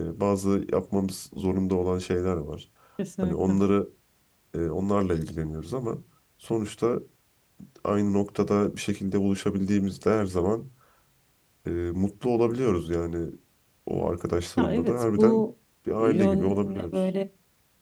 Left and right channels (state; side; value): identical; both; correlation 1.00